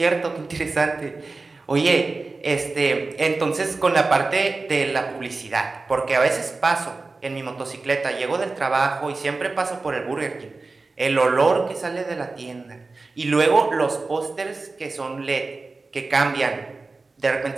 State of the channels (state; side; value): quieter; left; 3.7 dB